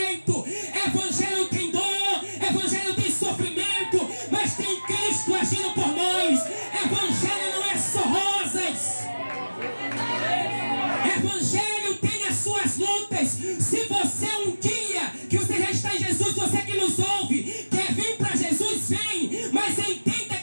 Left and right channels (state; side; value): inverted; both; correlation -1.00